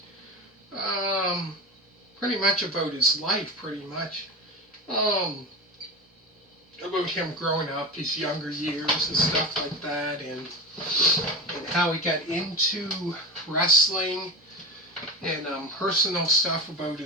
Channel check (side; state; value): both; normal; correlation 0.24